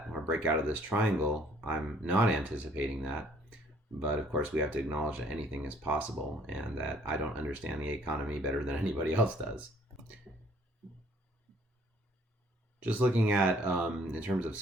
or break out of this triangle. I'm not anticipating that. But of course, we have to acknowledge that anything is possible and that I don't understand the economy better than anybody else does. Just looking at, in terms of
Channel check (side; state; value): both; normal; correlation 0.60